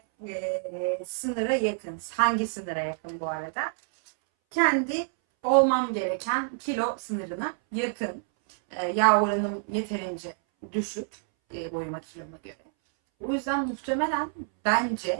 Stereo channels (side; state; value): left; silent; 60 dB below the other